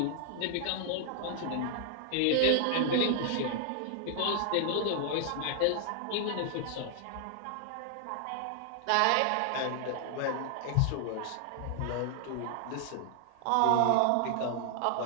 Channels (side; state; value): both; different; correlation 0.00